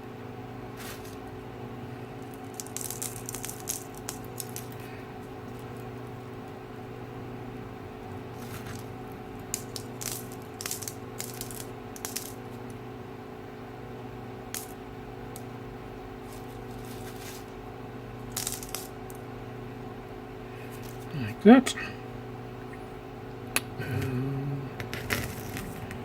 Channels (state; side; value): identical; both; correlation 1.00